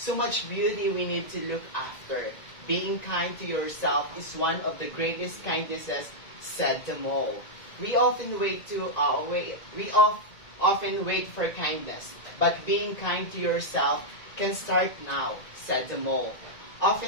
much beauty we need to look after. Being kind to yourself is one of the greatest kindnesses, said the mole. We often often wait for kindness, but being kind to yourself can start now, said the mole.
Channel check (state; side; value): late; right; 1.9 ms